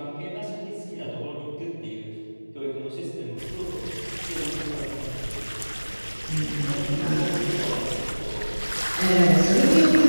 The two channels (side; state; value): both; inverted; correlation -1.00